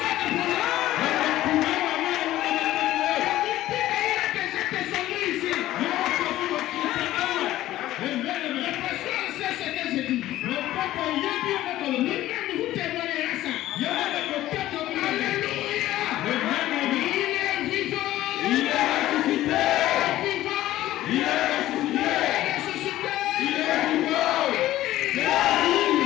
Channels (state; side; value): quieter; right; 14.7 dB